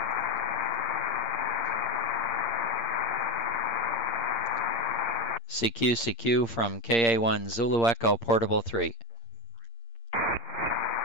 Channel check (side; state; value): right; late; 8.7 ms